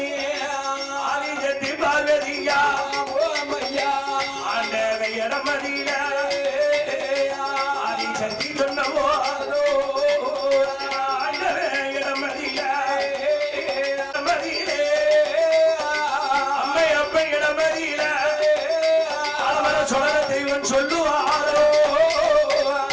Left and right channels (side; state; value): both; identical; correlation 1.00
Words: ஆதிசக்தி பார்வதியா ஆண்டவ இடமதியில ஆதிசக்தி சொன்னவோ ஆண்டவ இடமதியில அம்மை அப்ப இடமதியில ஆலமர சொலர தெய்வம் சொல்லுவாரோ.